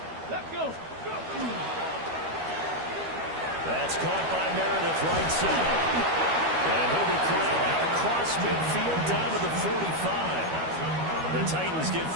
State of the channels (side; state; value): left; late; 12 ms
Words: Let's go. That's caught by Meredith, right side. And he'll be corralled out across midfield down to the 45. The Titans get